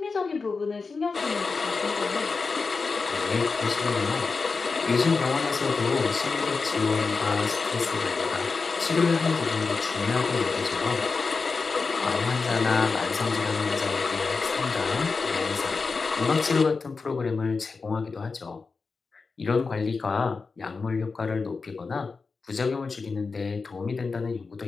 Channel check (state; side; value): quieter; right; 4.5 dB